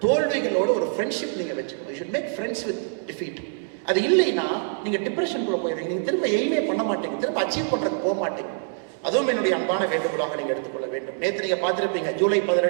தோல்விகளோட ஒரு ஃப்ரெண்ட்ஷிப் நீங்க வச்சுக்கணும். You should make friends with defeat. அது இல்லைன்னா நீங்க டிப்ரெஷனுக்குள்ள போயிடுறீங்க, நீங்க திரும்ப எய்மே பண்ண மாட்டீங்க, திரும்ப அச்சீவ் பண்றதுக்கு போக மாட்டீங்க. அதுவும் என்னுடைய அன்பான வேண்டுகோளாக நீங்க எடுத்துக்கொள்ள வேண்டும். நேற்று நீங்க பார்த்திருப்பீங்க, ஜூலை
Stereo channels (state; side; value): silent; left; 62 dB below the other